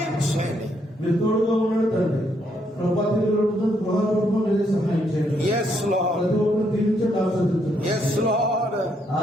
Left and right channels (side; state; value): both; normal; correlation 0.74